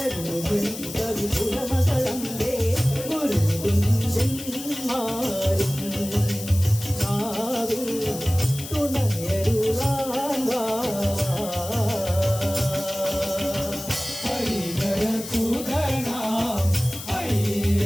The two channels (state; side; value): noise; left; hiss, 11 dB below the sound